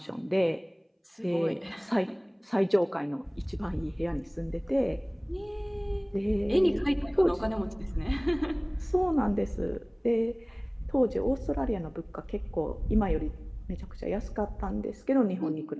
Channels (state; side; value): identical; both; correlation 1.00